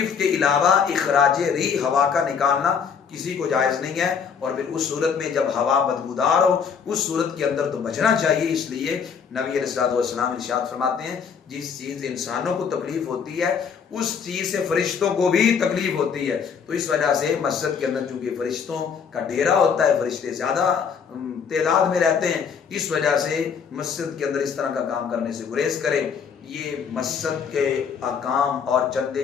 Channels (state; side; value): quieter; right; 6.6 dB